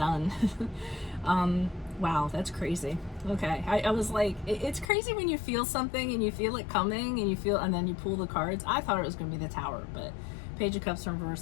Wow, that's crazy. Okay, I was like, it's crazy when you feel something and you feel it coming and then you pull the cards. I thought it was going to be the Tower, but Page of Cups in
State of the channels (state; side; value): drops out; right; at 4.9 s